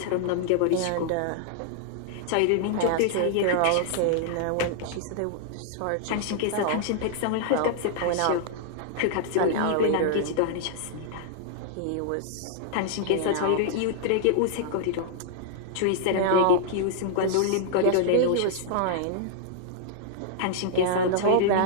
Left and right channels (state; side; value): different; both; correlation -0.01